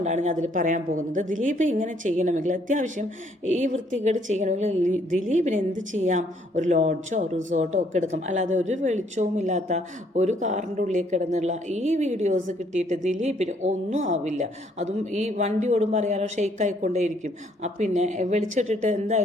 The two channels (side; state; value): both; normal; correlation 0.66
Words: ഞാൻ അതിൽ പറയാൻ പോകുന്നത്. ദിലീപ് ഇങ്ങനെ ചെയ്യണമെങ്കിൽ, അത്യാവശ്യം ഈ വൃത്തികേട് ചെയ്യണമെങ്കിൽ ദിലീപിന് എന്ത് ചെയ്യാം? ഒരു ലോഡ്ജോ റിസോർട്ടോ ഒക്കെ എടുക്കാം. അല്ലാതെ ഒരു വെളിച്ചവും ഇല്ലാത്ത ഒരു കാറിൻ്റെ ഉള്ളിൽ കിടന്നുള്ള ഈ വീഡിയോസ് കിട്ടിയിട്ട് ദിലീപിന് ഒന്നും ആവില്ല. അതും ഈ വണ്ടി ഓടുമ്പോൾ അറിയാലോ, ഷെയ്ക്ക് ആയിക്കൊണ്ടേയിരിക്കും. പിന്നെ വെളിച്ചിട്ടിട്ട്